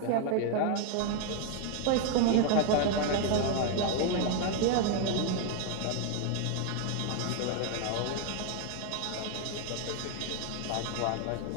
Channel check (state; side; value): different; both; correlation 0.00